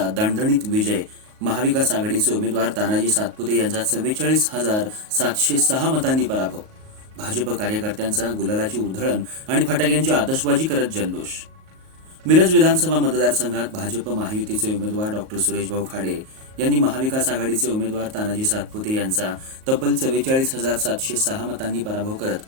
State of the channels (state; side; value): late; left; 38 ms